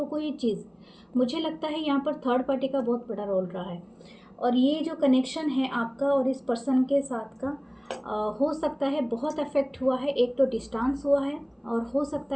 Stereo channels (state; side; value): identical; both; correlation 1.00